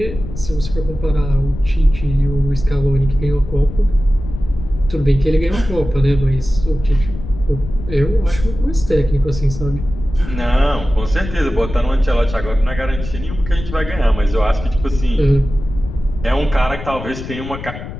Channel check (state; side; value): noise; left; rumble, 10 dB below the sound